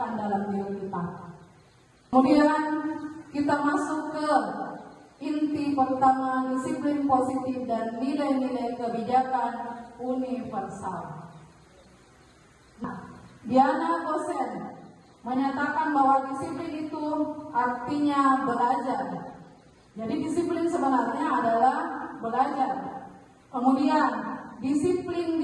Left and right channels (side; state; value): both; identical; correlation 1.00